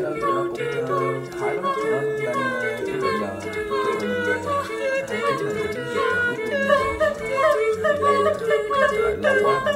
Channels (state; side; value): identical; both; correlation 1.00